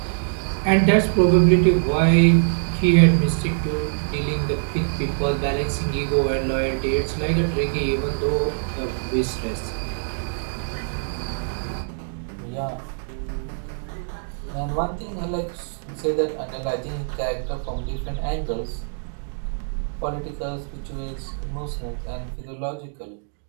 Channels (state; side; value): silent; left; digital silence